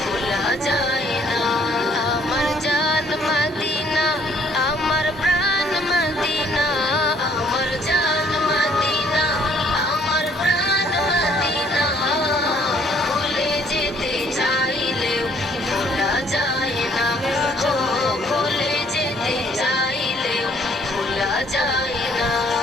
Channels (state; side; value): normal; both; correlation 0.62